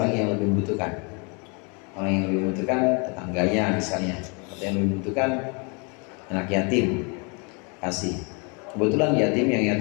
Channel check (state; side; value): quieter; right; 33.8 dB